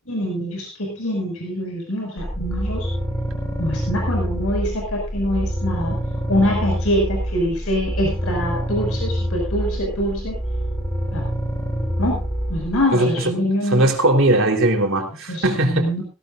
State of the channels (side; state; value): both; normal; correlation 0.50